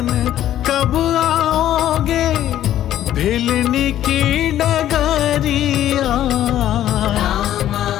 कब आओगे, भिलनी की डगरिया। रामा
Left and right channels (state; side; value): quieter; right; 12.1 dB